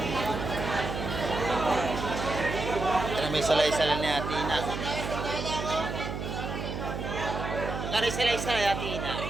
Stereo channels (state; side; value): noise; right; hum, 5 dB below the sound